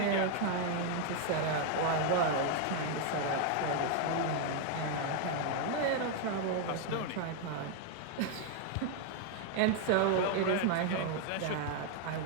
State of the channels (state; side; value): different; both; correlation 0.00